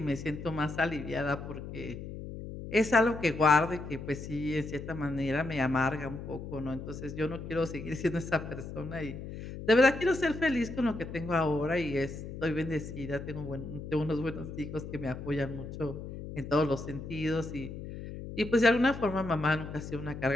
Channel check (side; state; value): left; noise; hum, 9 dB below the sound